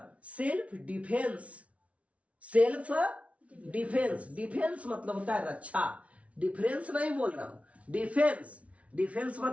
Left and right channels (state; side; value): late; left; 0.064 ms